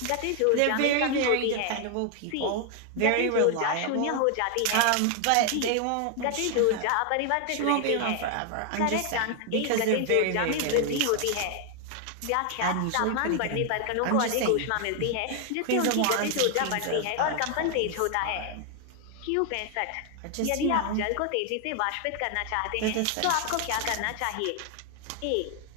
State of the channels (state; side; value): different; both; correlation 0.00